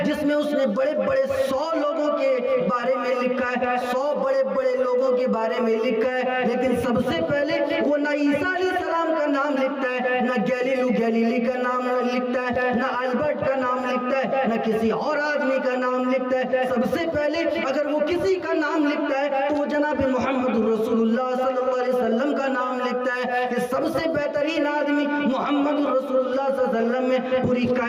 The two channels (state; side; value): identical; both; correlation 1.00